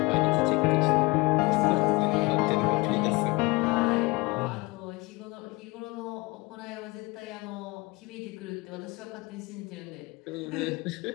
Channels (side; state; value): right; quieter; 24.5 dB